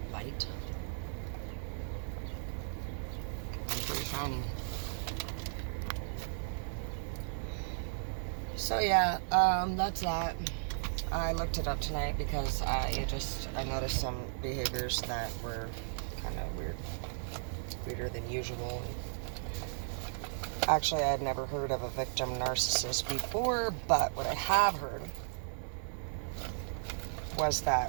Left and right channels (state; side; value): silent; left; digital silence